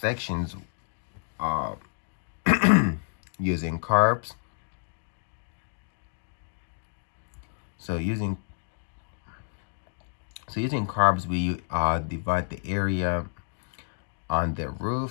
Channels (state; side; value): silent; right; digital silence